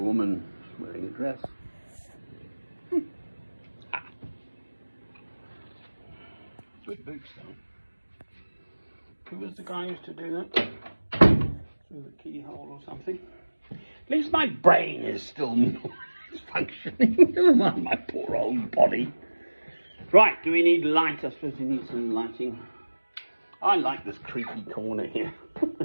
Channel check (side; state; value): both; inverted; correlation -1.00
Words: wearing a dress. Good boots though. Who was the guy who used to do that? Through the keyhole or something? At least my brain is still functioning. Never mind my poor old body. Right, do we need light? I suppose we need some lighting. I like this creaky corner here.